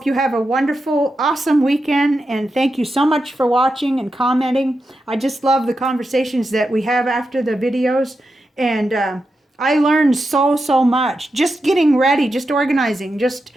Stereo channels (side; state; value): both; normal; correlation 0.88